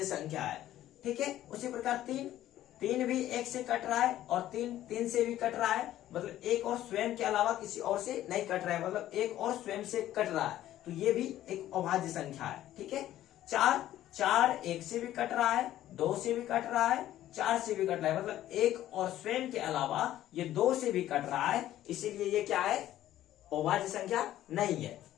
संख्या है। ठीक है, उसी प्रकार 3 भी 1 से कट रहा है और 3 से भी कट रहा है, मतलब एक और स्वयं के अलावा किसी और से नहीं कट रहा है, मतलब एक और स्वयं से कट रहा है, तो ये भी एक अभाज्य संख्या है। ठीक है, 4 1 से भी कट रहा है, 2 से भी कट रहा है, 4 से भी कट रहा है, मतलब एक और स्वयं के अलावा ये 2 से भी कट रहा है, इसीलिए ये क्या है, अभाज्य संख्या नहीं है।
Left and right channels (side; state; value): right; quieter; 13.2 dB